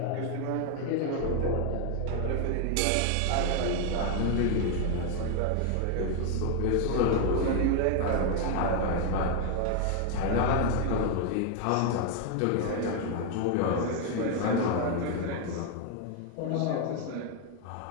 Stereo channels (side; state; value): both; different; correlation 0.01